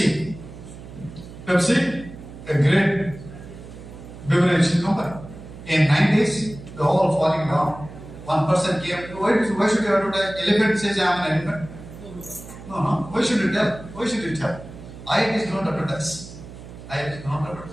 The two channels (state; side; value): noise; right; hum, 15 dB below the sound